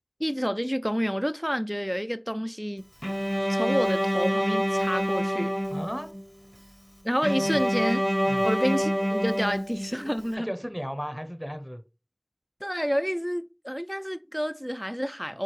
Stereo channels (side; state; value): both; identical; correlation 1.00